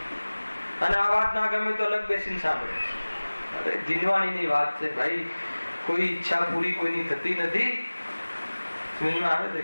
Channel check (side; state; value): both; inverted; correlation -1.00